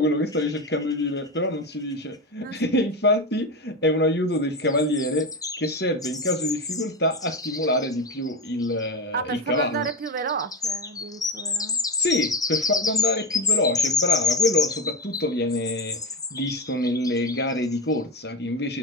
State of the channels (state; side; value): normal; both; correlation 0.18